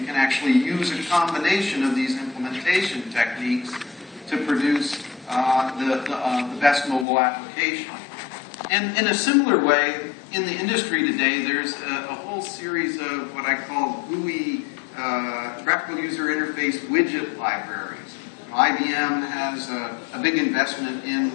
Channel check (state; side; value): drops out; right; at 7.1 s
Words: can actually use a combination of these implementation techniques to produce the best mobile application. And in a similar way, in the industry today, there's a whole series of what I call GUI, graphical user interface widget libraries. IBM has a big investment